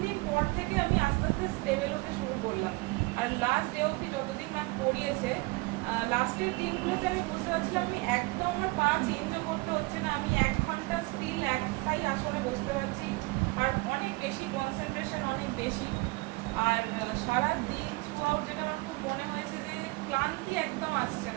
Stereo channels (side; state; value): left; quieter; 24.9 dB